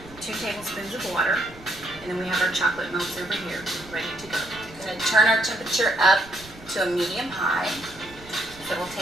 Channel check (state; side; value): noise; right; rumble, 20 dB below the sound